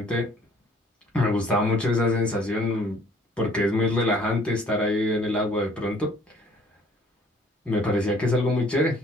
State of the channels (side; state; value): both; normal; correlation 0.57